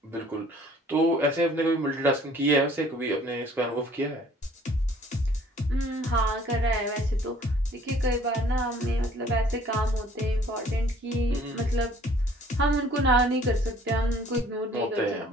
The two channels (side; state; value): both; normal; correlation 0.56